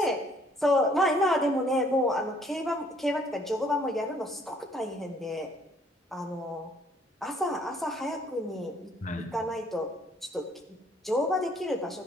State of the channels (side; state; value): both; normal; correlation 0.62